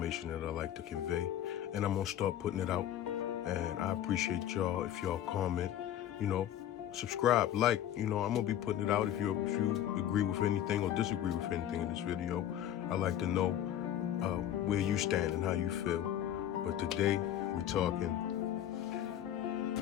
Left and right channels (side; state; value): right; quieter; 11.1 dB